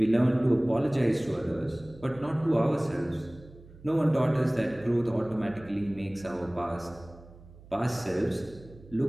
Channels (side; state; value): right; noise; hum, 21 dB below the sound